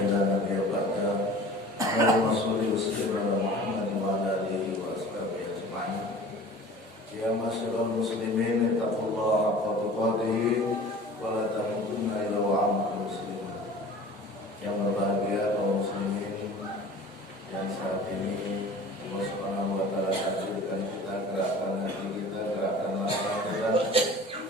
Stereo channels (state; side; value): normal; both; correlation 0.42